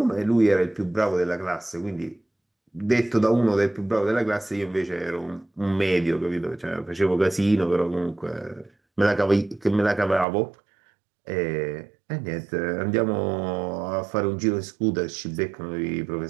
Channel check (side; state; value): left; drops out; at 10.2 s